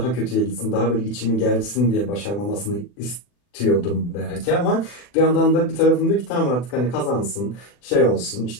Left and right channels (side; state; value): right; late; 40 ms